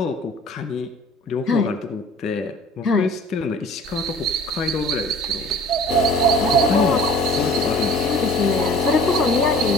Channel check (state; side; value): normal; both; correlation 0.46